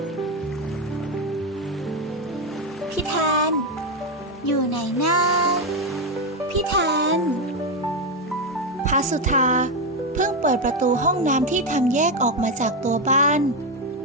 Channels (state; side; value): normal; both; correlation 0.08